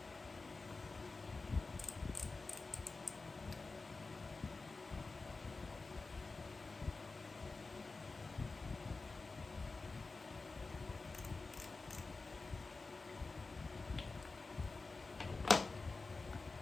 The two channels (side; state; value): right; quieter; 3.8 dB